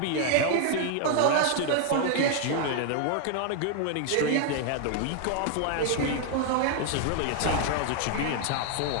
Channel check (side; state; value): both; different; correlation 0.00